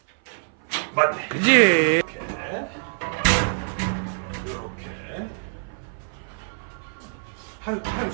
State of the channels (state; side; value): silent; left; 57 dB below the other